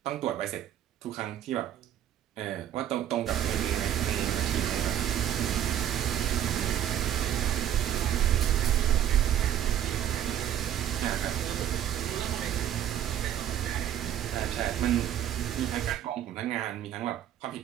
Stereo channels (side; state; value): left; quieter; 10.8 dB